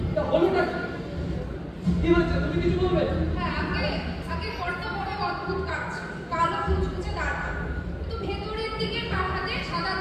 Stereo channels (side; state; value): both; identical; correlation 1.00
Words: তা হলোটা কি? কি হয়েছে? তুমি কিছু বলবে? হ্যাঁ, আগে বড্ড বড় অদ্ভুত কাজ, কালো কুচকুচে দাঁড়, কিন্তু ভেতরের দিকে কাঠাতে সাদা